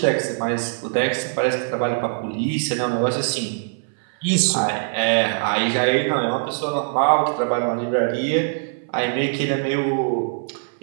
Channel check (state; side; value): silent; left; 61 dB below the other